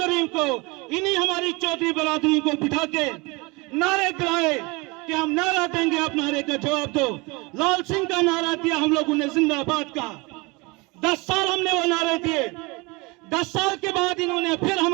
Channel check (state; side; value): quieter; left; 26.0 dB